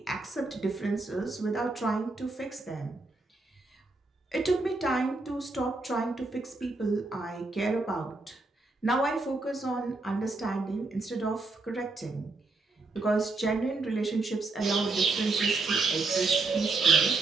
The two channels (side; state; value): left; quieter; 3.4 dB